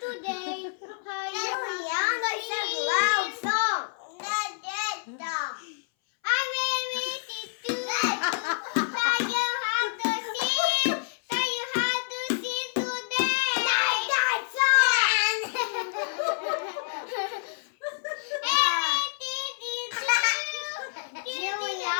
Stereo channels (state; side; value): silent; right; 59 dB below the other